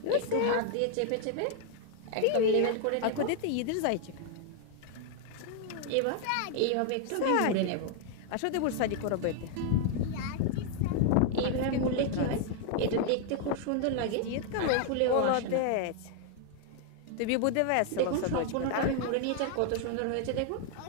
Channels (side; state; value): both; different; correlation 0.00